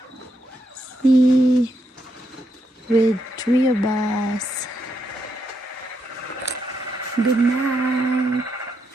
See, with 3 of us. Good night.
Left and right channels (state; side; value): normal; both; correlation 0.80